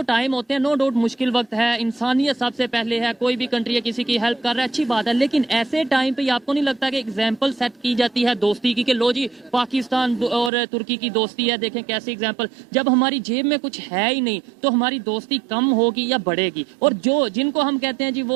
टाइम होते हैं। नो डाउट मुश्किल वक्त है, इंसानियत सबसे पहले है, कोई भी कंट्री है किसी की हेल्प कर रहा है, अच्छी बात है, लेकिन ऐसे टाइम पे आपको नहीं लगता कि एग्जाम्पल सेट की जाती है दोस्ती की कि लो जी पाकिस्तान और तुर्की की दोस्ती है, देखें कैसे एग्जाम्पल। जब हमारी जेब में कुछ है ही नहीं तो हमारी दोस्ती कम होगी या बढ़ेगी? और जिनको हम कहते हैं जी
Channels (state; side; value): drops out; left; at 10.5 s